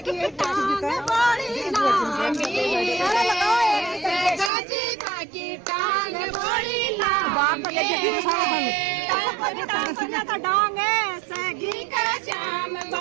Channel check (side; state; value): left; drops out; at 4.5 s